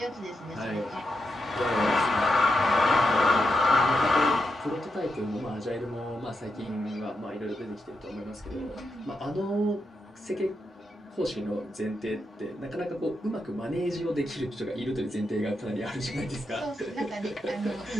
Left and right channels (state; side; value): normal; both; correlation 0.85